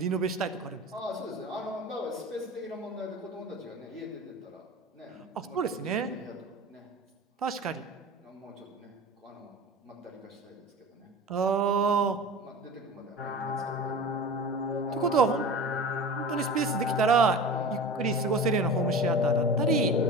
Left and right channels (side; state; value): both; normal; correlation 0.35